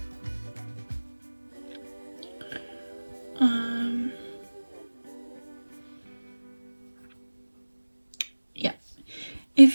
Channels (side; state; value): both; inverted; correlation -1.00